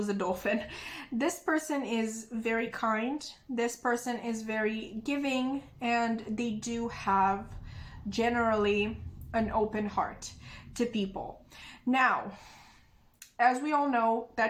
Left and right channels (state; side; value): identical; both; correlation 1.00